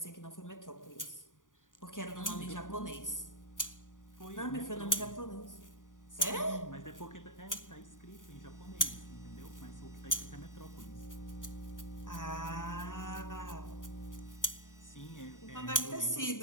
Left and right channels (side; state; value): right; late; 0.88 ms